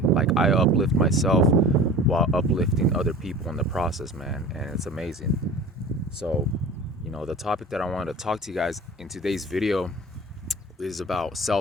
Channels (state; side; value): normal; both; correlation 0.39